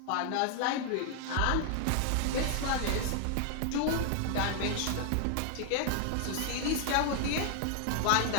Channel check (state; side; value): different; both; correlation 0.00